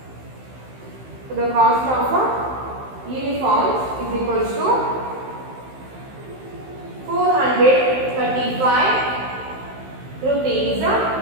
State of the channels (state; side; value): late; left; 15 ms